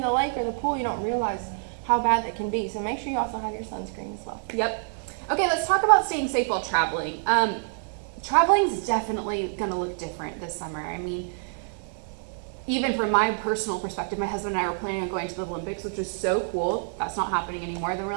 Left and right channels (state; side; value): silent; left; 60 dB below the other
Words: the lake or the pool, you don't realize how bad that can be. So make sure you also have your sunscreen as well. Yep. Okay, let's talk about staying safe while traveling. Traveling's definitely going to look different this summer. I mean, even from my personal perspective, my husband and I were planning on going to the Olympics, which was so cool. That's not happening anymore. Then we're